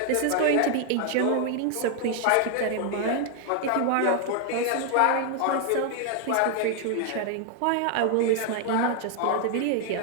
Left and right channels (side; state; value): both; different; correlation 0.00